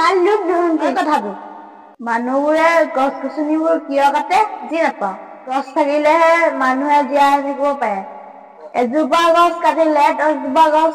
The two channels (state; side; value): identical; both; correlation 1.00